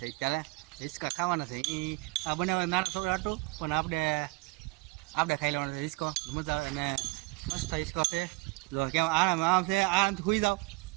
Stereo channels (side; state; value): left; quieter; 24.7 dB